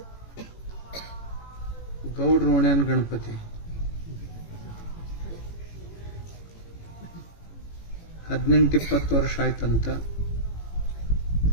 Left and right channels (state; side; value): late; right; 18 ms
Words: ಗೌಡ್ರೋಣ್ಯನ್ ಗಣಪತಿ 18-20 ವರ್ಷ ಆಯ್ತಂತ.